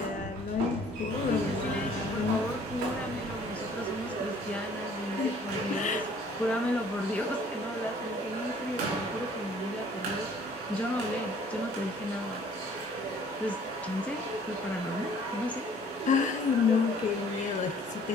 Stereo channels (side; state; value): both; normal; correlation 0.56